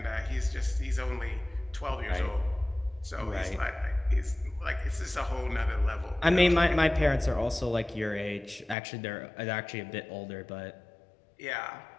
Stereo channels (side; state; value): right; drops out; at 8.8 s